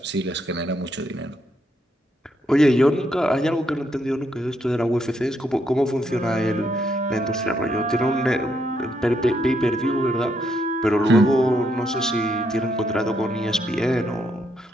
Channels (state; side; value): normal; both; correlation 0.76